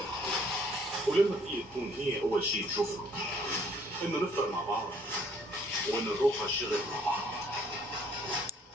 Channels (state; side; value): normal; both; correlation 0.62